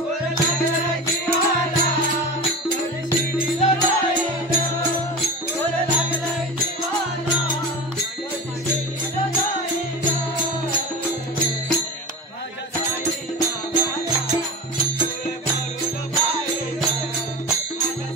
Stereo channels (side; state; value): both; normal; correlation 0.29